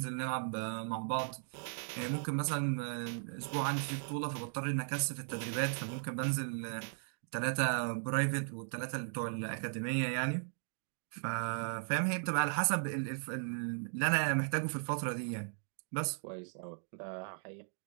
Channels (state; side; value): silent; left; digital silence